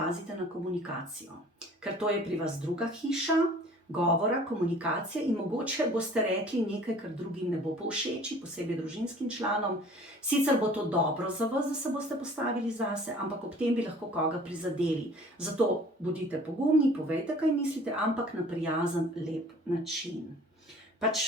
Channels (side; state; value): both; normal; correlation 0.50